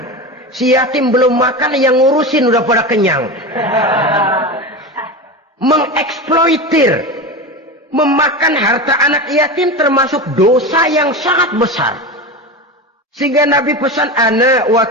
Si yatim belum makan, yang ngurusin udah pada kenyang. Mengeksploitir, memakan harta anak yatim termasuk dosa yang sangat besar. Sehingga Nabi pesan, ana wa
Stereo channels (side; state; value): both; normal; correlation 0.23